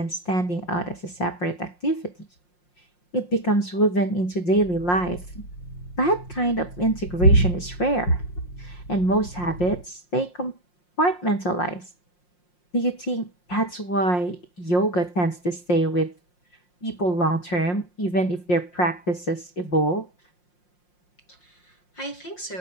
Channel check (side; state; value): right; late; 5.6 ms